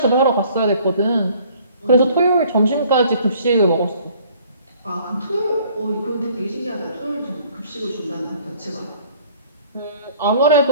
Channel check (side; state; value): both; inverted; correlation -0.57